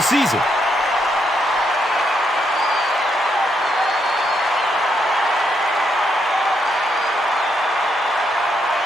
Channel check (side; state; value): both; normal; correlation 0.78